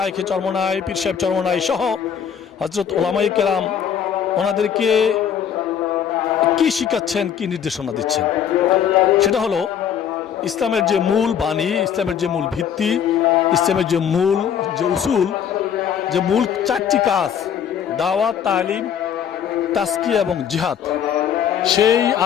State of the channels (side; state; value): right; quieter; 8.6 dB